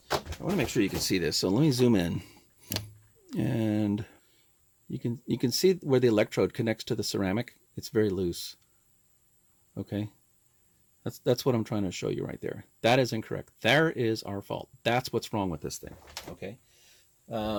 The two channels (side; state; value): both; identical; correlation 1.00